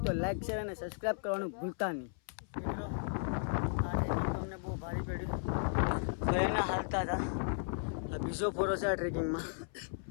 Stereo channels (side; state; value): right; silent; 54 dB below the other